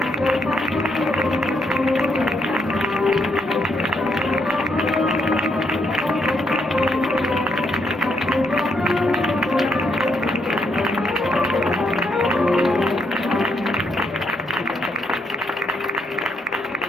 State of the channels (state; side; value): normal; both; correlation 0.75